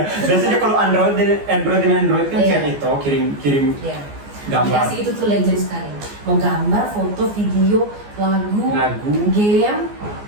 Biasanya kalau Android kan Iya. share itu kirim Iya. gambar. Aplikasi itu tuh legend sekali. Mau gambar, foto, video, lagu, game.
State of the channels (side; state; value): left; late; 14 ms